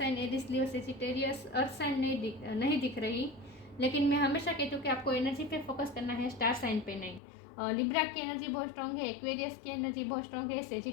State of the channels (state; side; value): drops out; right; at 7.2 s